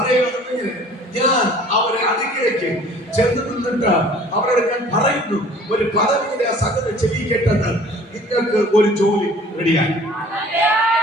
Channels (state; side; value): normal; both; correlation 0.50